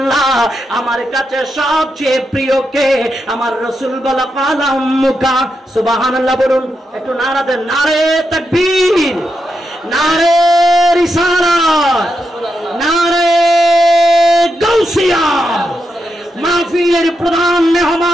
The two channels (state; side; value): normal; both; correlation 0.85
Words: আমার কাছে সবচেয়ে প্রিয় কে? আমার রাসূল বলে ক্বালা উম্মুকা। সুবহানাল্লাহ বলুন, একটু নারা দেন, নারে তাকবীর, নারে রিসালাত, নারে গাউসিয়া। মাহফিলের প্রধান